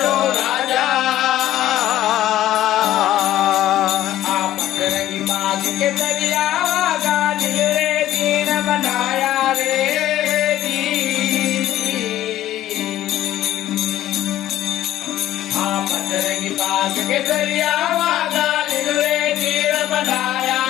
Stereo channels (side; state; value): right; quieter; 13.3 dB